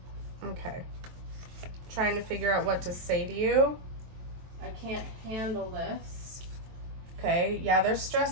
Okay. Trying to figure out what to say to you. I can't handle this. Okay, yeah, they're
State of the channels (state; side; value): late; left; 23 ms